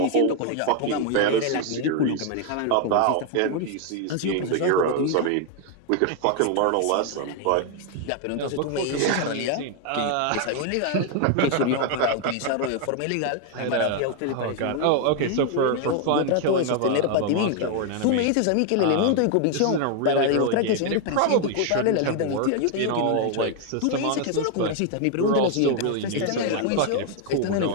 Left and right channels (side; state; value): both; different; correlation 0.00